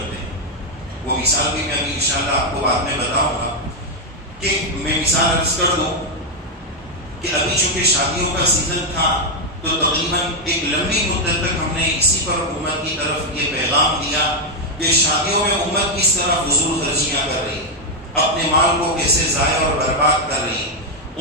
ہیں. وہ مثال بھی میں ابھی انشاءاللہ آپ کو بعد میں بتاؤں گا. کہ میں مثال عرض کر دوں کہ ابھی چونکہ شادیوں کا سیزن تھا تو تقریباً ایک لمبی مدت تک ہم نے اسی پر حکومت کی طرف یہ پیغام دیا کہ شادیوں میں امت کس طرح فضول خرچیاں کر رہی، اپنے مال کو کیسے ضائع اور برباد کر رہی.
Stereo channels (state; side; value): normal; both; correlation 0.01